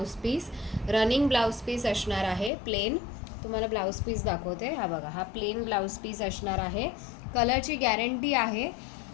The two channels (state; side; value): drops out; right; at 2.5 s